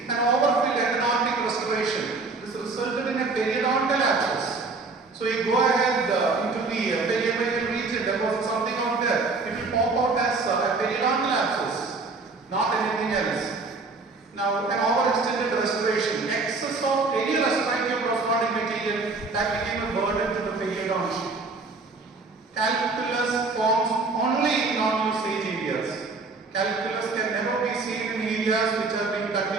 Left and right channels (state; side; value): quieter; left; 3.9 dB